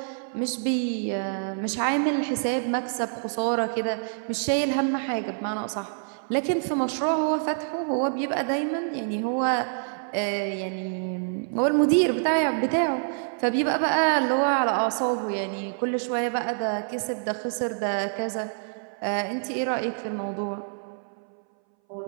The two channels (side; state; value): left; silent; 60 dB below the other